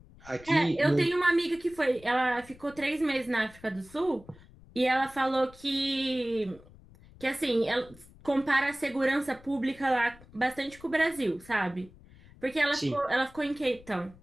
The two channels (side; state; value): left; noise; rumble, 23 dB below the sound